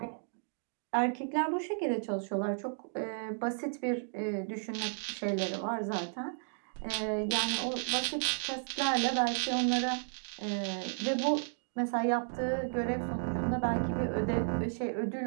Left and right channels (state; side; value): silent; left; digital silence